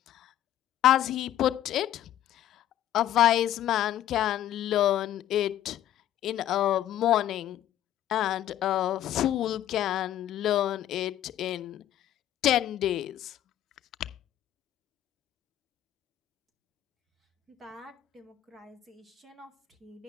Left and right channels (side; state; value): right; quieter; 12.1 dB